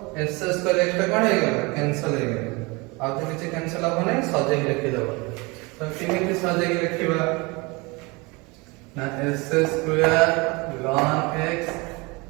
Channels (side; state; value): left; quieter; 26.4 dB